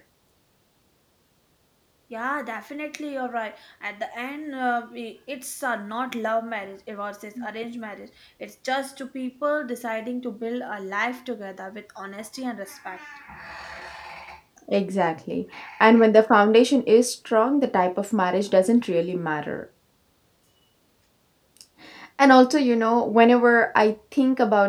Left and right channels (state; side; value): identical; both; correlation 1.00